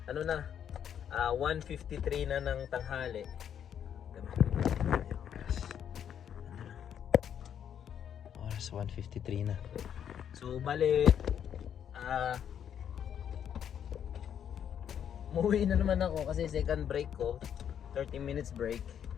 Ano na, 1:53 na ng tanghali. Oras 1:53 na. So bale, umuwi na naman ako kasi second break ko, 30 minutes break.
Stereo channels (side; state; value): right; quieter; 8.9 dB